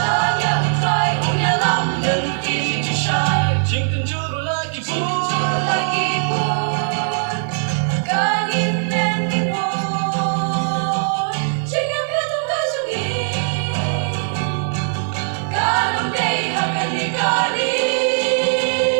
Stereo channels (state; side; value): silent; left; 66 dB below the other